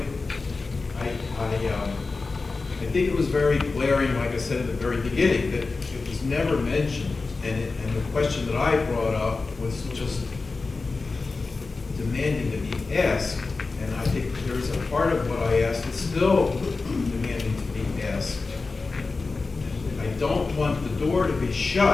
I think it was very glaring, like I said at the very beginning, that it was never mentioned. And the question that I brought up was just demanding to be asked, and I think there's a part of what I asked that's still demanding to be asked. I don't want the door to be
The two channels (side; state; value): right; quieter; 3.9 dB